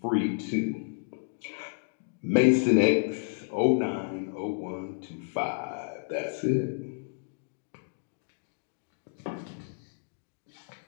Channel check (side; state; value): right; silent; 57 dB below the other